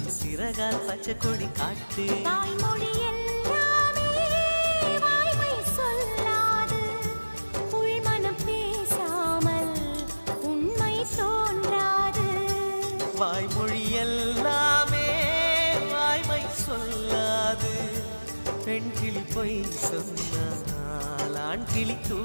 சிறகால் பச்சை கொடி காட்டு. தாய்மொழி எல்லாமே வாய்மை சொல்லாது, உள்மனம் பேசாமல் உண்மை தோன்றாது. வாய்மொழி எல்லாமே வாய்மை சொல்லாது, பெண் கிளி பொய் சொன்னால் ஆண் கிளி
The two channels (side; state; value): both; inverted; correlation -1.00